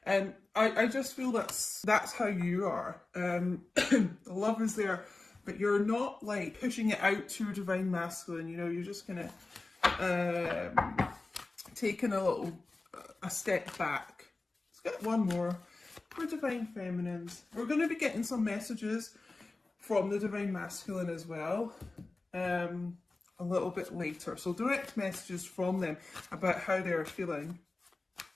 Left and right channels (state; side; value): quieter; right; 3.3 dB